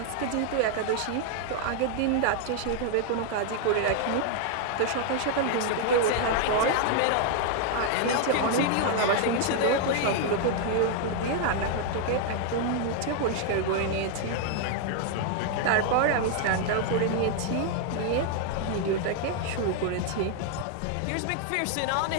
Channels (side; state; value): both; different; correlation 0.00